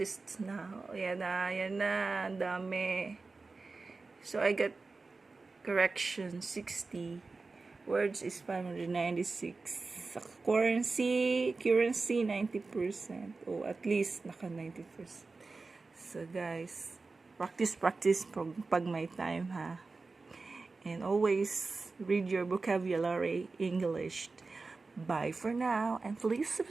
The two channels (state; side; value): quieter; left; 3.9 dB